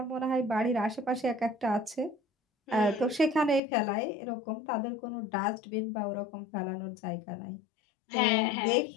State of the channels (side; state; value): right; drops out; at 3.6 s